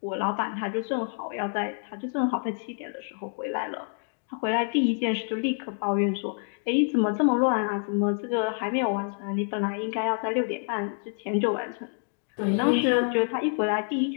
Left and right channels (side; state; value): right; silent; 60 dB below the other